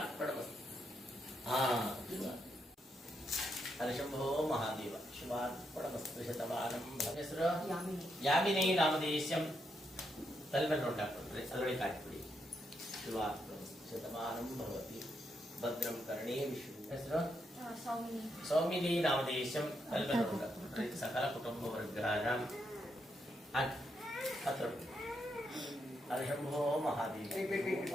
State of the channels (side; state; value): both; normal; correlation 0.80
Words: ಅರಶಂಭೋ ಮಹಾದೇವ ಶಿವಾರ್ಪಣಮಸ್ತು ಶತಮಾನಂ ಹೆಸರು ಯಾಮಿನಿ ನಾಮಧೇಯಸ್ಯಂ ತಲೆ ಮೇಲೆ ನೋಡಿ ಹಾಕೊಂಡ್ರೆ ಅದರೊಳಗೆ ಹಾಕಿಬಿಡಿ ಶಿವಾರ್ಪಣಮಸ್ತು ಶತಮಾನಂ ಭವತಿ ಭದ್ರಂ ಕರ್ಣೇ ವಿಷ್ಣು ಹೆಸರು ಸೌಮಿನಿ ನಾಮಧೇಯಸ್ಯಂ ತಲೆ ಮೇಲೆ ನೋಡಿ ಹಾಕೊಂಡ್ರೆ ಸಕಲ ಕುಟುಂಬ ವರ್ಗಾನಾಂ ಅರಶಂಭೋ ಮಹಾದೇವ